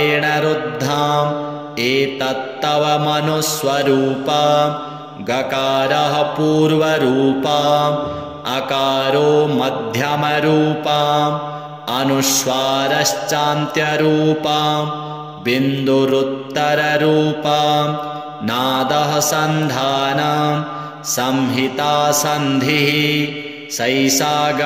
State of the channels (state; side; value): identical; both; correlation 1.00